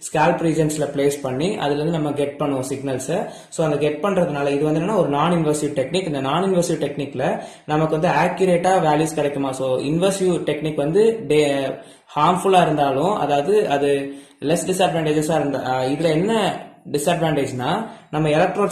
ஸ்கேல்ப் ரீஜன்ஸ்ல பிளேஸ் பண்ணி அதுல இருந்து நம்ம கெட் பண்ணுவோம் சிக்னல்ஸ். ஸோ அந்த கெட் பண்றதுனால இது வந்து என்னன்னா ஒரு நான் இன்வெசிவ் டெக்னிக். இந்த நான் இன்வெசிவ் டெக்னிக்ல நமக்கு வந்து ஆக்யூரேட்டா வேல்யூஸ் கிடைக்குமா. ஸோ இன்வெசிவ் டெக்னிக் வந்து ஹார்ம்ஃபுல்லா இருந்தாலும், அதாவது அது லெஸ் டிஸ்அட்வான்டேஜஸா இருந்தா, இதுல என்ன டிஸ்அட்வான்டேஜ்னா நம்ம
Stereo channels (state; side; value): identical; both; correlation 1.00